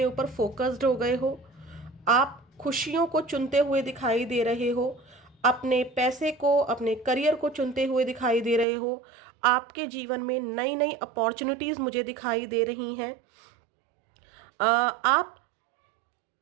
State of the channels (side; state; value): left; drops out; at 8.7 s